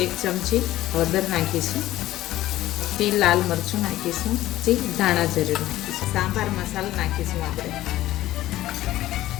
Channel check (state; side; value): quieter; right; 15.1 dB